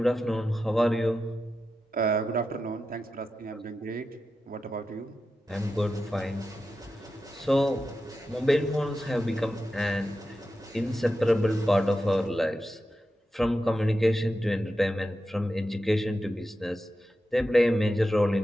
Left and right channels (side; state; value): both; normal; correlation 0.90